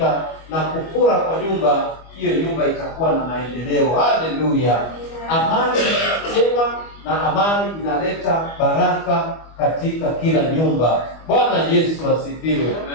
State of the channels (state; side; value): late; right; 25 ms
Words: na kufura kwa nyumba, hiyo nyumba itakuwa na maendeleo. Haleluya. Amani njema na amani inaleta baraka katika kila nyumba. Bwana Yesu asifiwe.